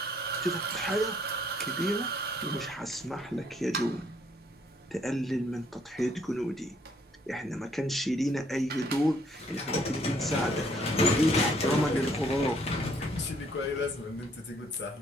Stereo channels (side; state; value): both; normal; correlation 0.66